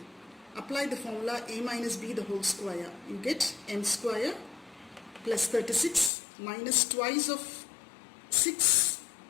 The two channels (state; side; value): drops out; right; at 6.1 s